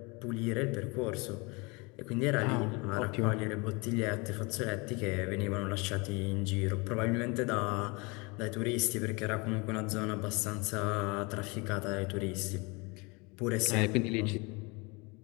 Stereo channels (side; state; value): right; quieter; 27.8 dB